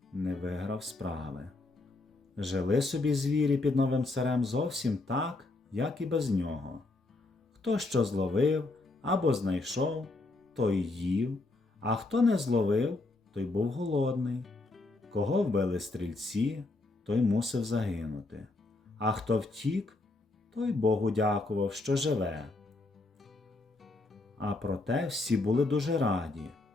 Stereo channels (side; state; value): right; quieter; 3.1 dB